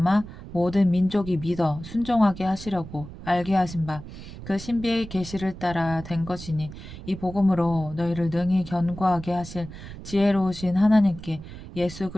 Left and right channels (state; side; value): noise; right; rumble, 13 dB below the sound